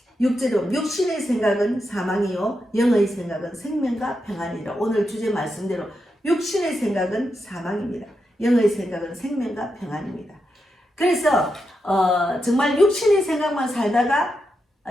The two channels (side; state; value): both; normal; correlation 0.86